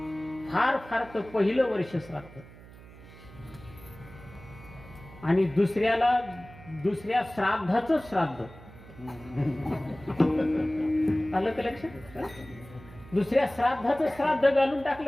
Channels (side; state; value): right; noise; hum, 19 dB below the sound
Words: फार फार तर पहिलं वर्ष श्राद्ध आणि दुसऱ्या श्राद्धाचं श्राद्ध. आलं का लक्षात? दुसऱ्या श्राद्धाचं श्राद्ध घालून